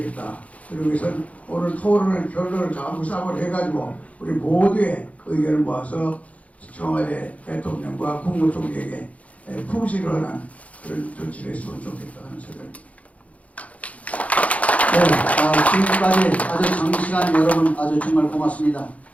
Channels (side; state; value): right; late; 0.067 ms